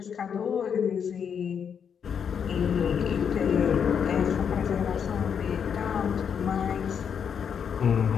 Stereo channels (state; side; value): quieter; right; 7.4 dB